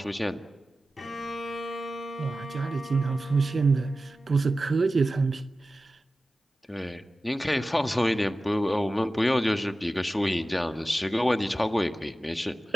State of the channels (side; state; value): both; normal; correlation 0.94